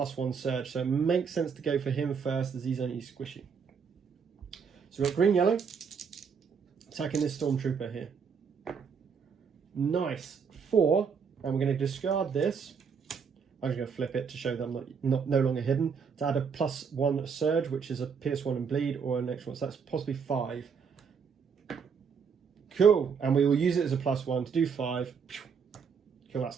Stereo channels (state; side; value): quieter; left; 6.3 dB